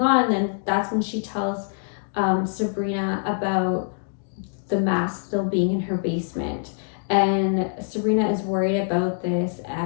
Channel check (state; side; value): silent; right; digital silence